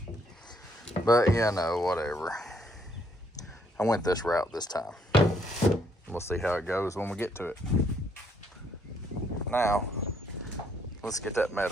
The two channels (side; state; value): both; normal; correlation 0.70